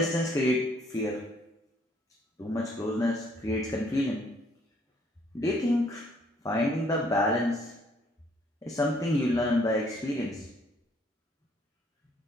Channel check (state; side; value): normal; both; correlation 0.64